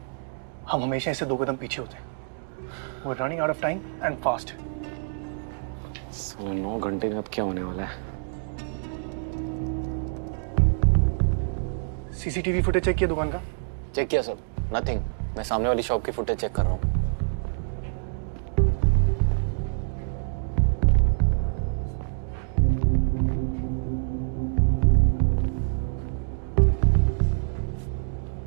हम हमेशा इससे 2 कदम पीछे होते हैं। We're running out of time and fast. 9 घंटे में अब क्या होने वाला है? सीसीटीवी फुटेज चेक किया दुकान का? चेक किया सर, नथिंग। मैं सामने वाली शॉप की फुटेज चेक कर रहा हूँ।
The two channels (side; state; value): left; silent; digital silence